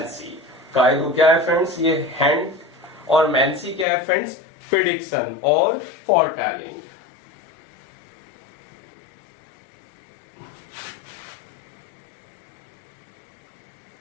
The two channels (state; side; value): drops out; right; at 3.9 s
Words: कायरो क्या है फ्रेंड्स, ये हैंड, और मैंसी क्या है फ्रेंड्स, प्रिडिक्शन और फोरटेलिंग।